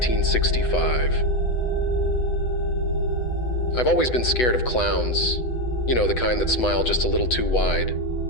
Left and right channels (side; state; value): right; late; 8.0 ms